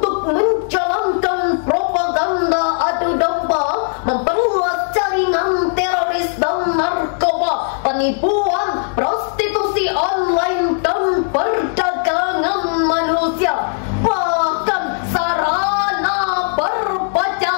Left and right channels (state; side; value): silent; right; digital silence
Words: menjalankan propaganda adu domba, memperluas jaringan teroris dan narkoba, penipuan, prostitusi online dan perdagangan manusia, bahkan sarana